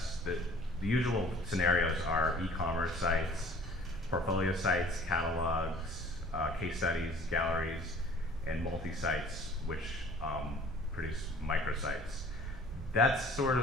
the usual scenarios are e-commerce sites, portfolio sites, catalogs, case studies, galleries, and multi-sites, which produce microsites. That's sort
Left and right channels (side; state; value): both; normal; correlation 0.50